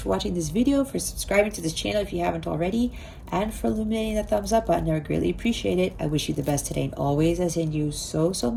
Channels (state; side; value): identical; both; correlation 1.00